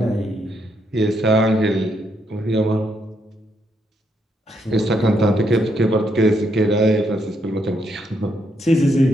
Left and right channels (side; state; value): both; normal; correlation 0.77